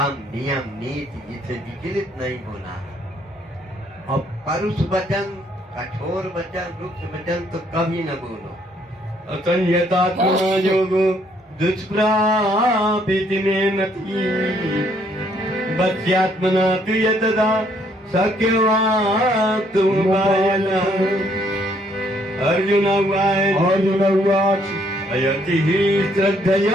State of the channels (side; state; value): both; normal; correlation 0.67